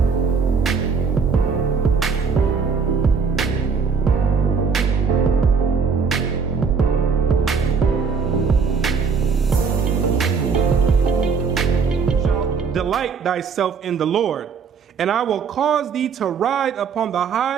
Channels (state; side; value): quieter; left; 5.6 dB